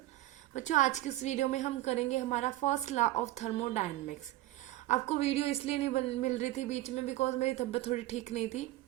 बच्चों, आज की इस वीडियो में हम करेंगे हमारा फर्स्ट लॉ ऑफ थर्मोडायनेमिक्स। आपको वीडियो इसलिए नहीं मिल रही थी बीच में बिकॉज मेरी तबीयत थोड़ी ठीक नहीं थी,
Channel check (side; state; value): left; quieter; 16.0 dB